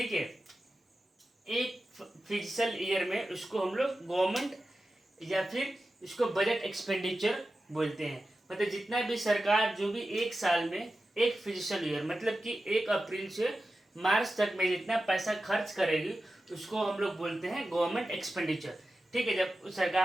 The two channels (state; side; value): normal; both; correlation 0.93